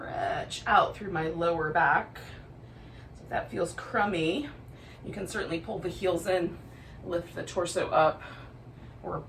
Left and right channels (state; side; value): identical; both; correlation 1.00